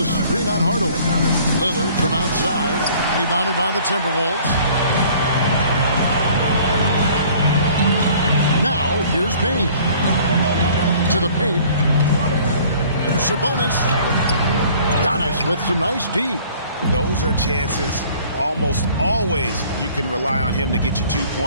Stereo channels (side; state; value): both; inverted; correlation -0.53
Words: screen on Hardaway. Lillard from outside, rebounded by the Timberwolves. Now, here's Bane. To the paint. Here's Sabonis. Giannis with some nice D. Those are chances. Almost always you can rely on him to get you 2